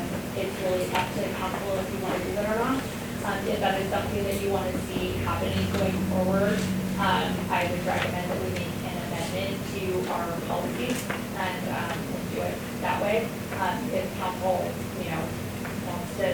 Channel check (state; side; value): identical; both; correlation 1.00